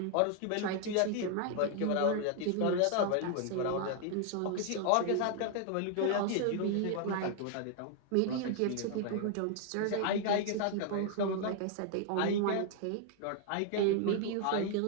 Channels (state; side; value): different; both; correlation 0.00